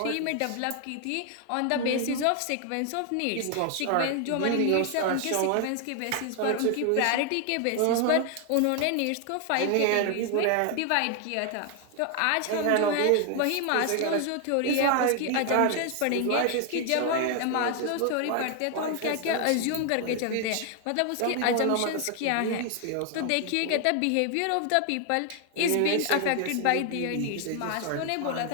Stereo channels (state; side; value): different; both; correlation 0.00